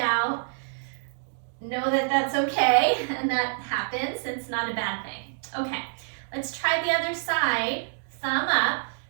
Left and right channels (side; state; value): left; silent; 60 dB below the other